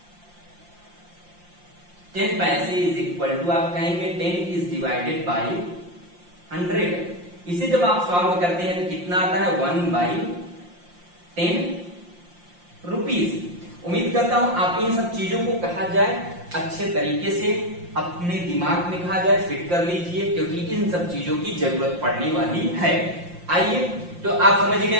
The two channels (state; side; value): late; left; 5.7 ms